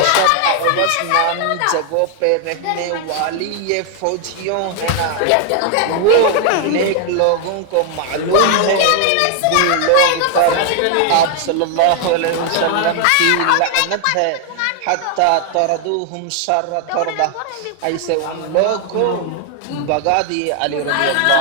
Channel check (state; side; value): different; both; correlation 0.00